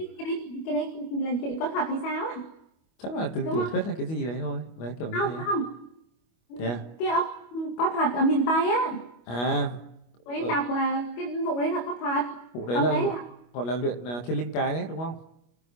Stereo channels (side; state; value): right; late; 25 ms